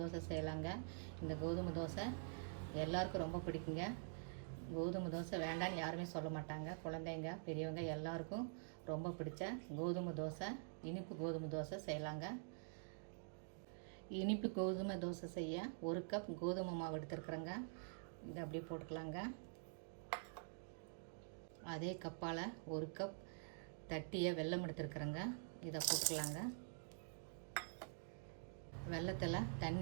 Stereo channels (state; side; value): silent; left; digital silence